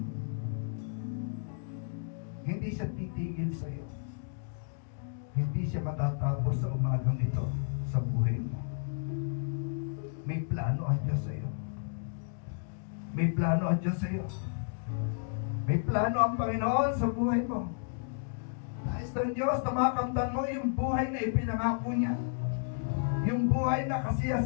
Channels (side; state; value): right; silent; digital silence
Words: Hindi siya titigil sa iyo. Hindi siya matatapos sa umagang ito sa buhay mo. May plano ang Diyos sa iyo. May plano ang Diyos sa iyo. May plano ang Panginoon sa buhay mo. Nais ng Diyos na makamtan mo yung buhay na ipinangako niya. Yung buhay na